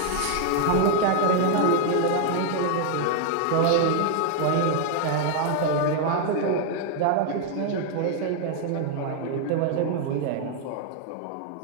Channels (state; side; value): different; both; correlation 0.00